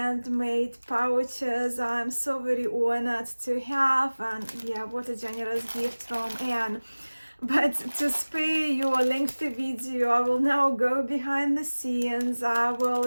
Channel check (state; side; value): inverted; both; correlation -1.00